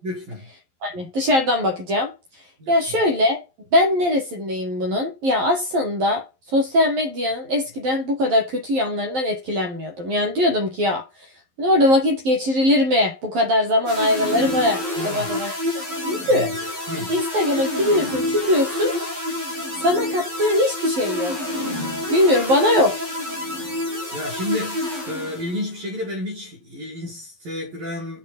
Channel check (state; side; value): late; left; 11 ms